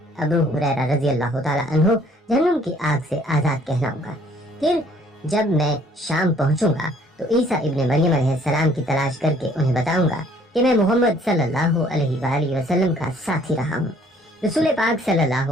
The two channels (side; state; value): both; normal; correlation 0.60